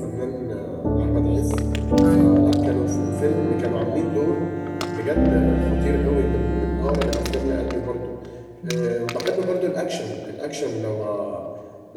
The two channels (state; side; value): identical; both; correlation 1.00